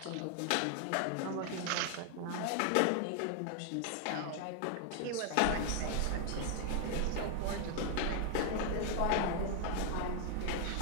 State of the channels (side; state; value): both; different; correlation 0.00